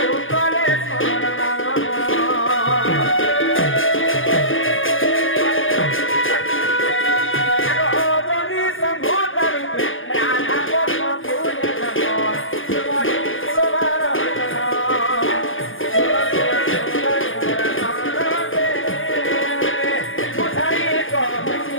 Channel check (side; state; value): right; late; 0.58 ms